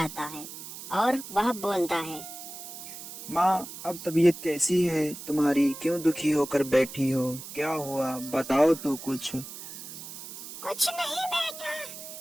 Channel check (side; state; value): right; noise; hiss, 12 dB below the sound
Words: आता है और वह बोलता है, माँ, अब तबीयत कैसी है तुम्हारी? क्यों दुखी होकर बैठी हो? क्या हुआ? बताओ तो कुछ। कुछ नहीं बेटा,